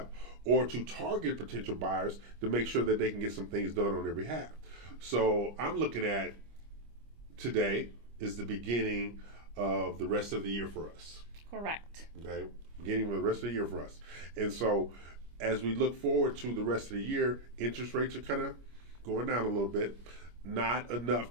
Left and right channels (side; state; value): left; late; 25 ms